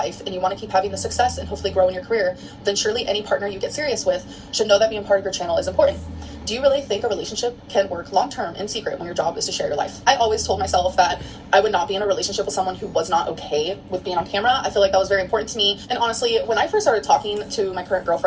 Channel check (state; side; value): identical; both; correlation 1.00